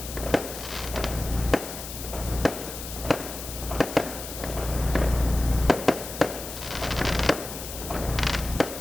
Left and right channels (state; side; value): noise; left; hiss, 9 dB below the sound